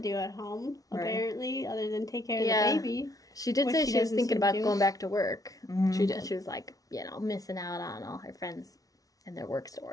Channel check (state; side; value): late; right; 0.18 ms